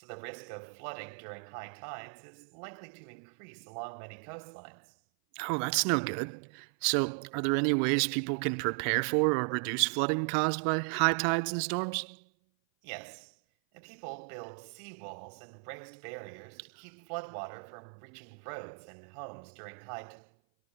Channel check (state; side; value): silent; left; 54 dB below the other